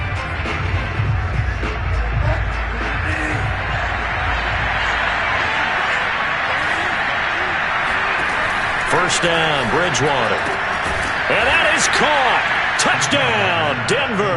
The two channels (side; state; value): both; identical; correlation 1.00